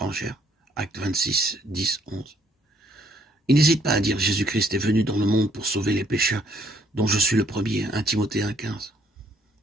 Acte 26, 10, 11. Il n'hésite pas à dire Jésus-Christ est venu dans le monde pour sauver les pécheurs, dont je suis le premier, 1 Timothée 1, 15.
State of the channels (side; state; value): both; normal; correlation 0.65